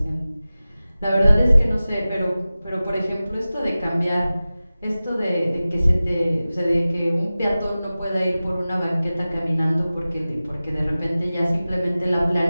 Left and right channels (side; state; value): both; inverted; correlation -0.96